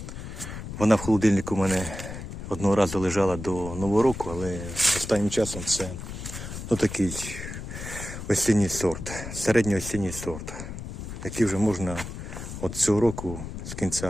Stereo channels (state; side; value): noise; left; rumble, 9 dB below the sound